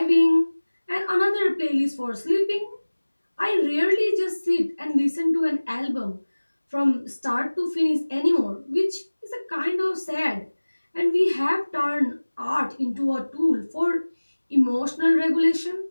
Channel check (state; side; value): inverted; both; correlation -1.00